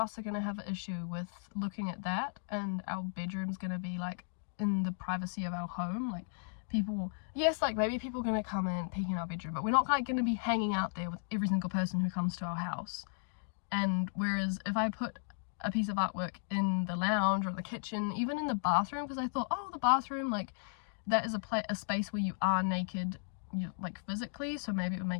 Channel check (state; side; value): silent; right; digital silence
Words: are going to have an issue with looking at that, and our bedroom's going to be like in the privacy of our home. Like, people, yes, like maybe people are going to come in peek in our bedroom, but we're not like going to be hanging out there with every single person who comes to our house. And whereas if I put a piece of artwork in the lounge or the kitchen, even in the bathroom, because I thought, oh, the bathroom, like that is a space where you are naked, like physically, so maybe it would